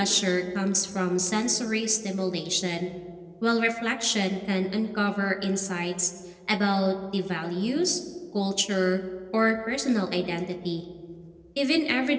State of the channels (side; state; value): both; identical; correlation 1.00